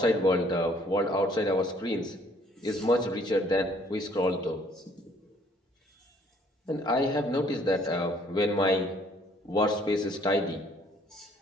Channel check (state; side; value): normal; both; correlation 0.61